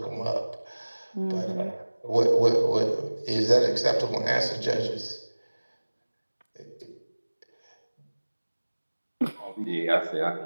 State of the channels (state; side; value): inverted; both; correlation -1.00